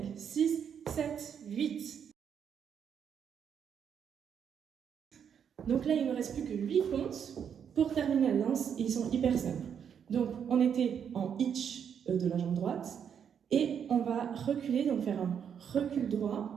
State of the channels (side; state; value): left; quieter; 7.9 dB